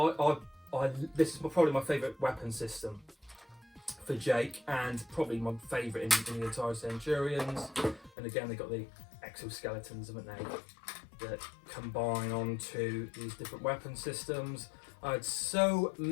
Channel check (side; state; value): right; drops out; at 8.1 s